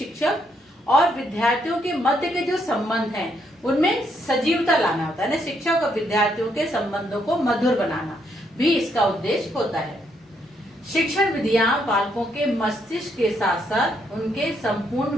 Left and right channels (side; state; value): both; normal; correlation 0.74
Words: और विद्यार्थियों के मध्य के जो संबंध हैं उनमें सजीवता लाना होता है ना। शिक्षक और विद्यार्थियों के संबंधों को मधुर बनाना भी इसका उद्देश्य होता है। शिक्षण विधियां बालकों के मस्तिष्क के साथ साथ उनके संपूर्ण